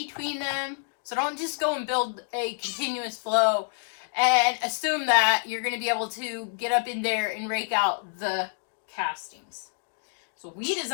them. So don't just go and build a continuous flow and assume that you're going to be able to get up in there and rake out the castings. So we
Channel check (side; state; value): right; silent; 60 dB below the other